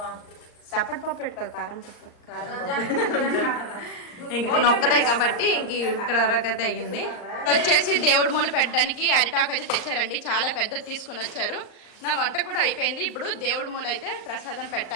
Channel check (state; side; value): late; right; 39 ms